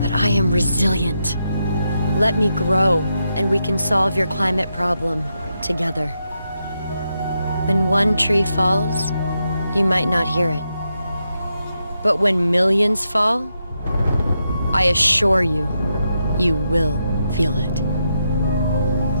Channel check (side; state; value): both; inverted; correlation -0.84